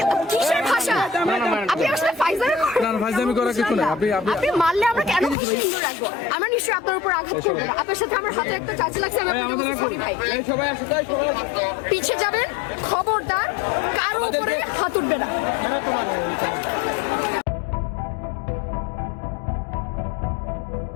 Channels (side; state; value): right; drops out; at 5.4 s